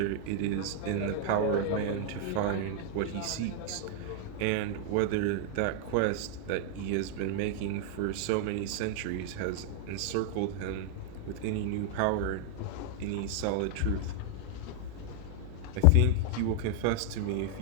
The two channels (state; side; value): different; both; correlation 0.00